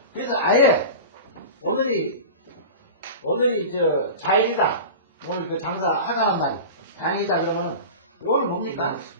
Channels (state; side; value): inverted; both; correlation -0.31